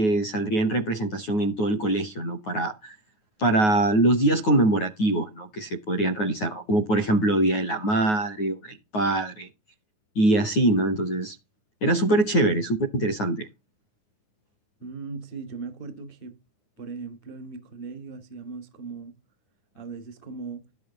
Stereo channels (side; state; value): right; late; 9.4 ms